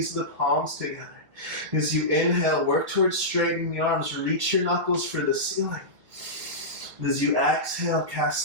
the palms together. As you inhale, work towards straightening the arms. Reach your knuckles for the ceiling. As you exhale,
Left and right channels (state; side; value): late; left; 1.6 ms